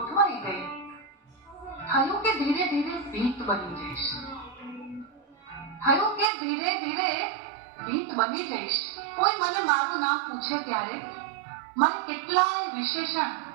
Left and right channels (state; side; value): drops out; left; at 6.3 s